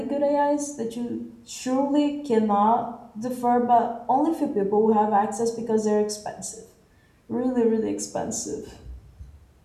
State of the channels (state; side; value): identical; both; correlation 1.00